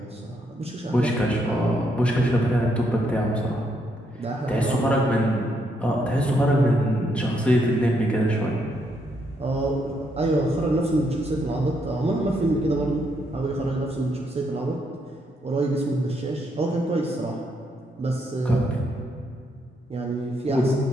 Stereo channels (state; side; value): normal; both; correlation 0.76